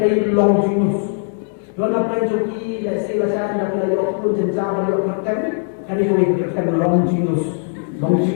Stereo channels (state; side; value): silent; right; 59 dB below the other